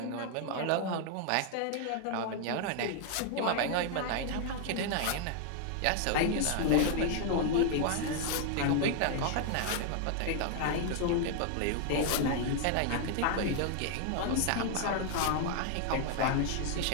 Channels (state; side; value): different; both; correlation 0.00